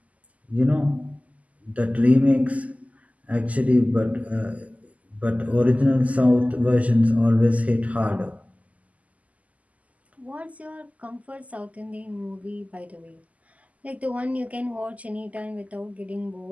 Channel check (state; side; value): late; left; 0.072 ms